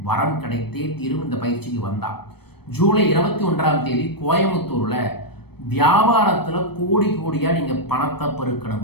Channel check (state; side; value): late; right; 0.97 ms